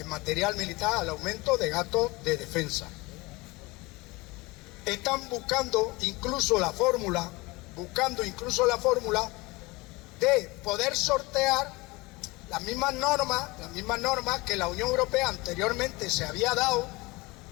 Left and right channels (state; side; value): quieter; right; 23.2 dB